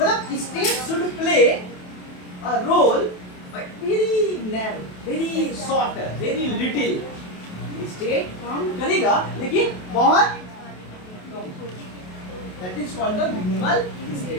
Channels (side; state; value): right; late; 28 ms